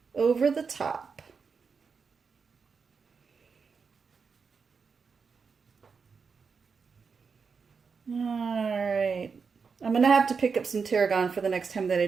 over the top. All right. I'm going to have to pick up some tarragon for the next time that I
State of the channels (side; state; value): left; quieter; 5.4 dB